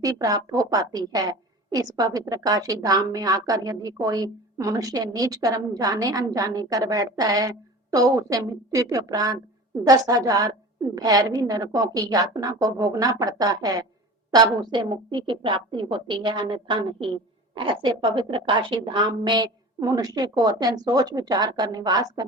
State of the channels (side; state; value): both; normal; correlation 0.37